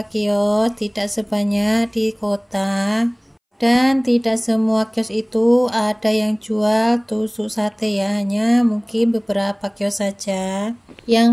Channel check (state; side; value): identical; both; correlation 1.00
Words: kios, tidak sebanyak di kota. Dan tidak semua kios itu ada yang jual tusuk sate ya, hanya mungkin beberapa kios saja. Yang